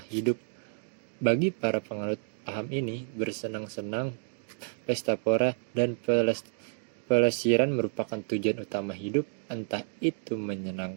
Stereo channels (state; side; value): silent; left; digital silence